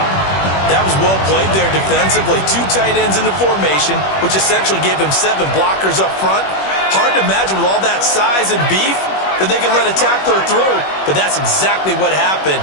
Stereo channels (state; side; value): late; right; 21 ms